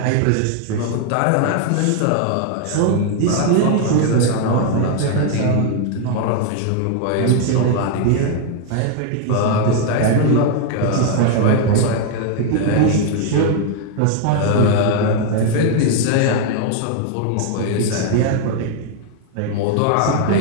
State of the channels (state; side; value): different; both; correlation 0.00